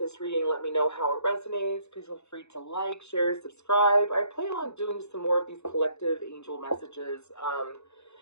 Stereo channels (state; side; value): late; right; 0.81 ms